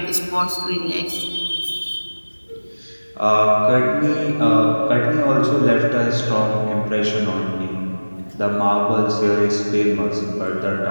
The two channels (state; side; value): inverted; both; correlation -1.00